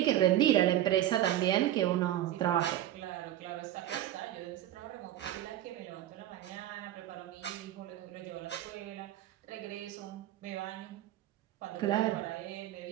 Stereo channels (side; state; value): left; quieter; 12.9 dB